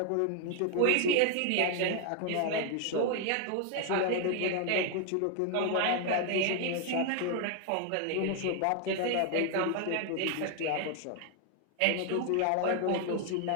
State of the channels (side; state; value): both; different; correlation 0.00